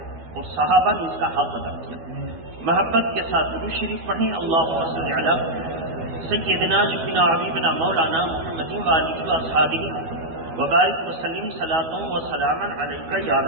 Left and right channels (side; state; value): left; late; 12 ms